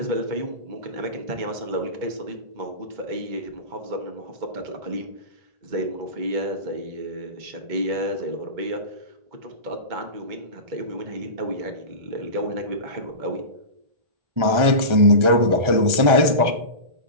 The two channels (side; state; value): left; late; 1.3 ms